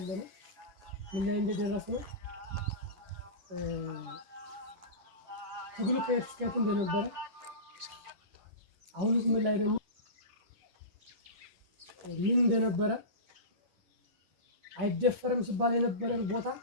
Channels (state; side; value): late; left; 10 ms